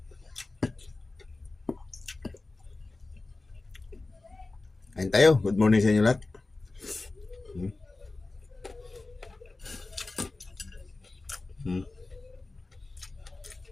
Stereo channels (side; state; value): right; quieter; 3.3 dB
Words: Ayun tayo. Good morning sa inyo lahat.